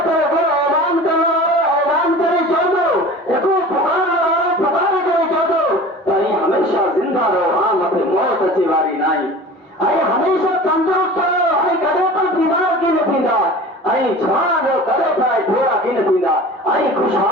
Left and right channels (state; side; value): normal; both; correlation 0.39